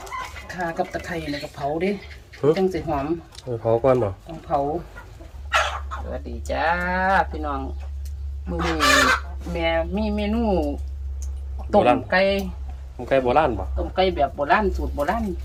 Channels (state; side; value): identical; both; correlation 1.00